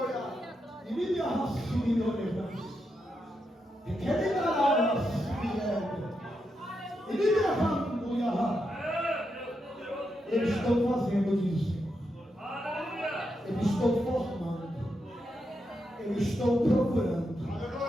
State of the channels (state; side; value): normal; both; correlation 0.84